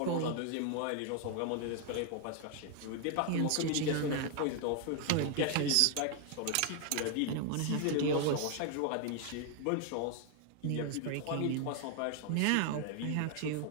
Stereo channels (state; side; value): different; both; correlation 0.00